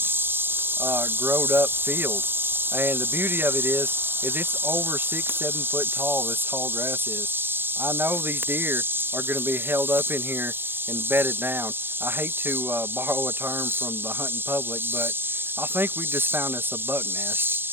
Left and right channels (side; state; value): left; late; 0.10 ms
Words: growed up field, and the beauty of it is it's over 6-7 foot tall. This tall grass is. I know these deer are going to be held up in here and bedded down. I hate to borrow a term from the hunting public, but I think we just found us a buck